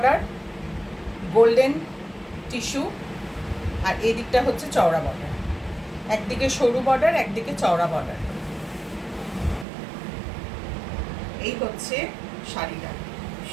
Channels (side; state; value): left; drops out; at 9.7 s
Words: গোল্ডেন টিস্যু, আর এই দিকটা হচ্ছে চওড়া বর্ডার। একদিকে সরু বর্ডার, একদিকে চওড়া বর্ডার। এই হচ্ছে শাড়িটা,